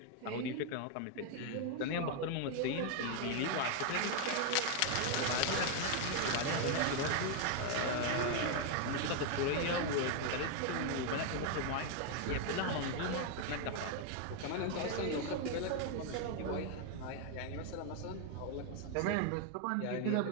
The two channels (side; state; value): both; different; correlation 0.01